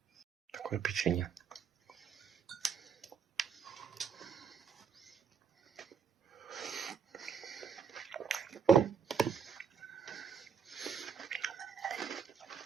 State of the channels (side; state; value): left; quieter; 6.6 dB